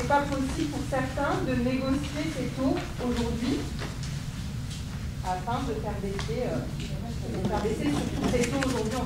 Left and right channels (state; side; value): identical; both; correlation 1.00